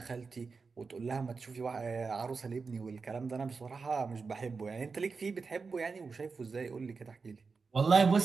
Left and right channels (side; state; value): left; quieter; 4.7 dB